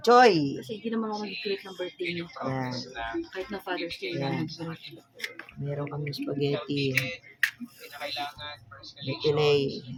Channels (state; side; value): identical; both; correlation 1.00